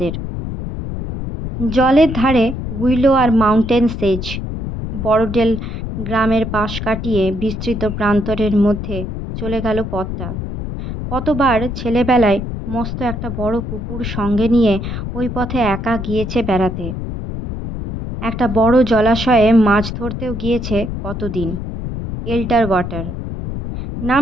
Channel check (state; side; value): noise; left; rumble, 6 dB below the sound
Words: জলের ধারে উইলো আর মাউন্টেন সেজ। বড়ডেল গ্রামের পাশ কাটিয়ে বিস্তৃত প্রান্তরের মধ্যে চলে গেল পথটা। কতবার ছেলেবেলায় মস্ত একটা বড় কুকুর সঙ্গে নিয়ে ওই পথে একা গিয়েছে বেড়াতে। একটা বড় জলাশয়ে মাছ ধরতেও গিয়েছে কতদিন। এল্টার ওয়াটার